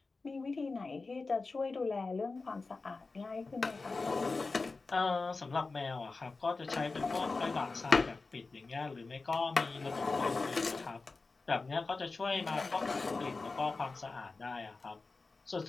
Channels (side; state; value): right; quieter; 3.9 dB